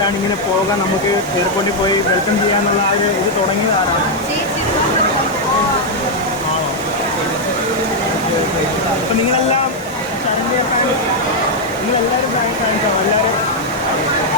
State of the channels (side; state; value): both; normal; correlation -0.02